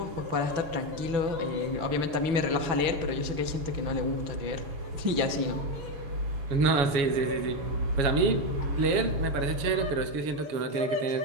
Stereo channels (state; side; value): late; left; 6.1 ms